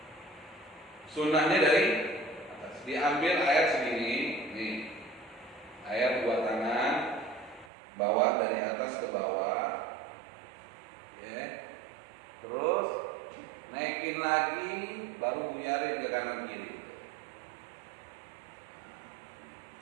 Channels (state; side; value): drops out; left; at 7.7 s